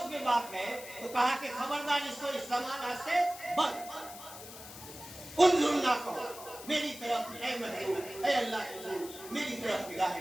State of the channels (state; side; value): noise; left; hiss, 14 dB below the sound